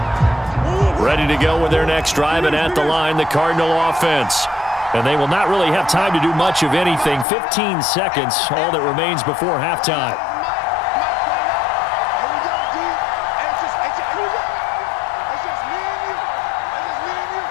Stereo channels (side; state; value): right; drops out; at 7.2 s